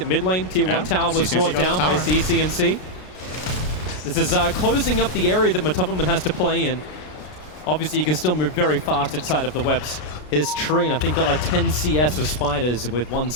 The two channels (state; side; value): late; right; 33 ms